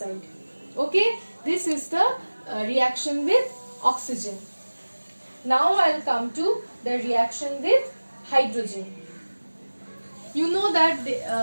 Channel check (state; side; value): inverted; both; correlation -1.00